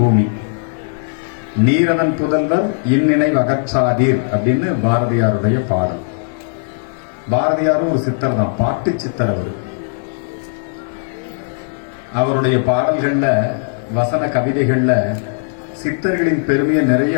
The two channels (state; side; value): silent; right; digital silence